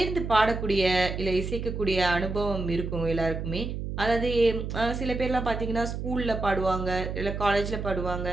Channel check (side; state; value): right; noise; hum, 5 dB below the sound